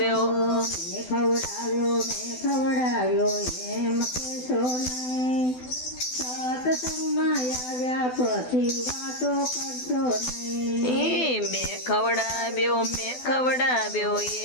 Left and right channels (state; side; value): late; right; 12 ms